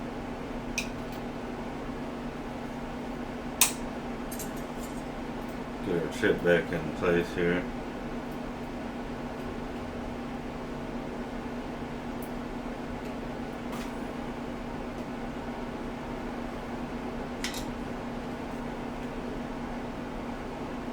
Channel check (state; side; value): identical; both; correlation 1.00